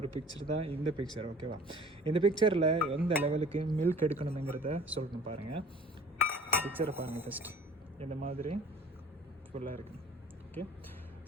பிக்சர் தான் இந்த பிக்சர். ஓகேவா? இந்த பிக்சரில் எந்த லெவலுக்கு மில்க் எடுக்கணுங்கிறத சொல்லணும். பாருங்கள், பிக்சரை பாருங்கள். ஃபஸ்ட்டு இந்த மாதிரி ஃபுல்லாக இருக்குது. ஓகே,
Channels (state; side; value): normal; both; correlation 0.48